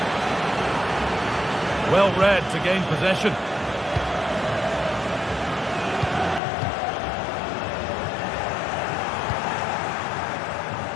Well read to gain possession.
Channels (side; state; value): right; drops out; at 6.4 s